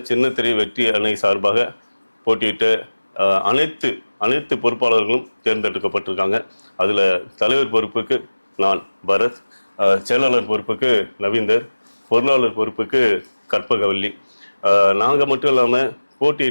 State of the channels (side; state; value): both; inverted; correlation -1.00